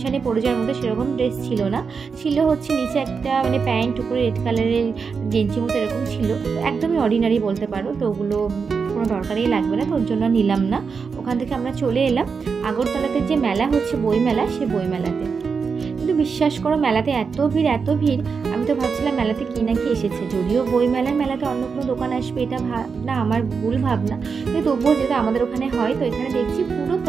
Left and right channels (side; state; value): left; quieter; 5.5 dB